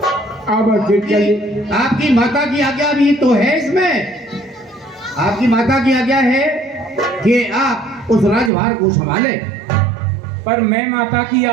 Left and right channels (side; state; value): left; drops out; at 8.5 s